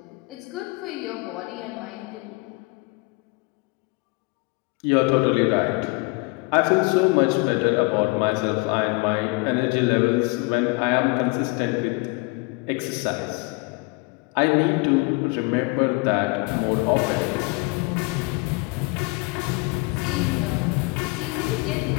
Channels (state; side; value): quieter; right; 26.8 dB